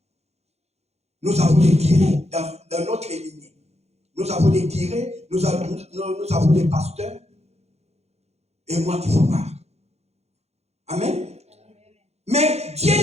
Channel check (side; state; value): left; late; 0.31 ms